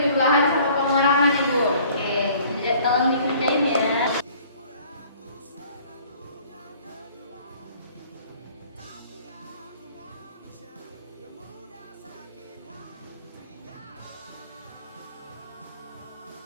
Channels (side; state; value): both; inverted; correlation -0.54